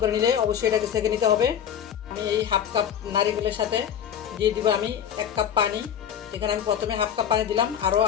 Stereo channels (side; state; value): right; quieter; 9.1 dB